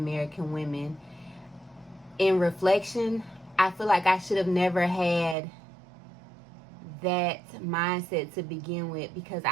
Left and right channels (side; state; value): left; drops out; at 5.4 s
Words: women, in reflection, I feel like I should have never had that mindset to begin with, because